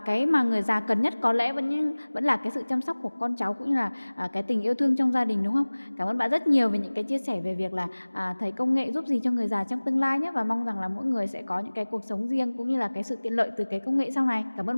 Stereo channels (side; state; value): both; inverted; correlation -1.00